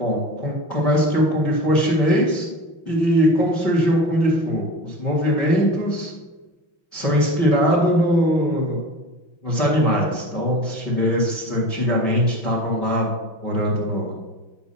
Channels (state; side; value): late; right; 5.9 ms